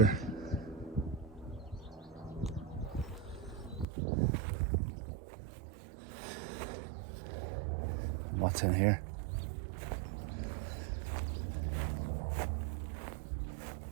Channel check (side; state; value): left; drops out; at 3.9 s